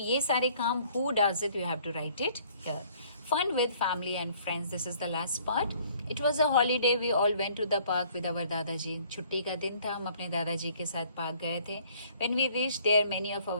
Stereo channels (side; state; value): both; inverted; correlation -0.58